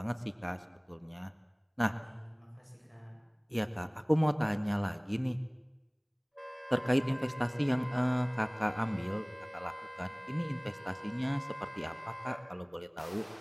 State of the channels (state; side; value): identical; both; correlation 1.00